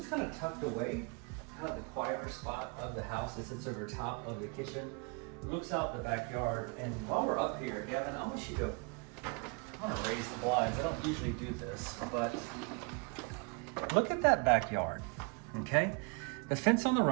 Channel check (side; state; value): left; quieter; 33.7 dB